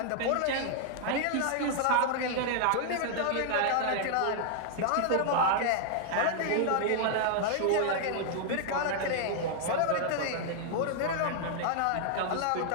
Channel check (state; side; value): different; both; correlation -0.01